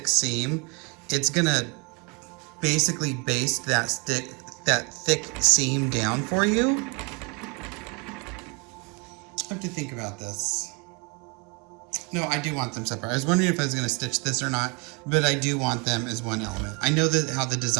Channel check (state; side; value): quieter; left; 31.3 dB